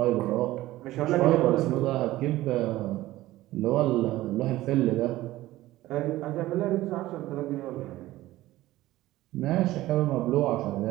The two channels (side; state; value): left; quieter; 16.5 dB